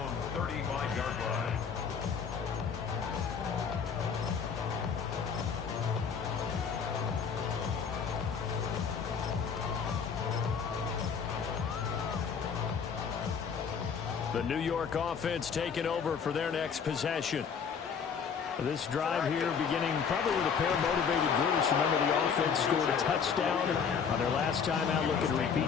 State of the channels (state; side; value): quieter; right; 6.5 dB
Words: 35-yard line. The New York offense taking over for their next possession. This drive here beginning probably with a pair of motivated groups. Remember, the offense scored a touchdown on their last time out. Looking to repeat